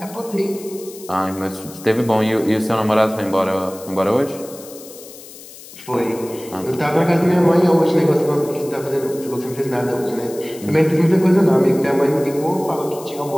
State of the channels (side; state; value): left; noise; hiss, 17 dB below the sound